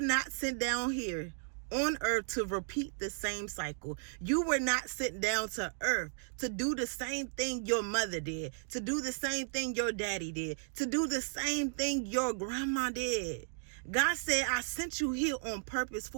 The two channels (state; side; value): silent; left; digital silence